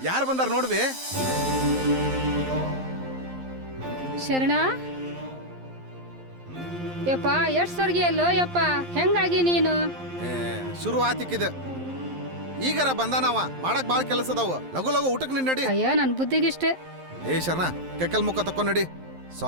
ಯಾರು ಬಂದಾರ ನೋಡ್ಬೇ ಶರಣ ಯಪ್ಪ ಎಷ್ಟ್ ಸರ್ಗಿ ಅಲ್ಲೋ ಯಪ್ಪ ಹೆಂಗಾಗಿ ನೀನು ಶುರು ಆತಿಕ್ಕಿದ ಈಗಾರ ಬಂದಾನವ ಮಾಡಕ್ ಬಾಳ ಕೆಲಸ ಅದಾವ ಲಗು ಲಗು ಊಟಕ್ಕೆ ನಿನ್ ನಡಿ ಅಯ್ಯೋ ನನ್ ಬುದ್ಧಿಗಿಷ್ಟೇ ಏ ಶರಣ ಕೆಕ್ಕಲ್ ಮುಖ ತಕೊಂಡ್ ನಡಿ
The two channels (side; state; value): left; late; 11 ms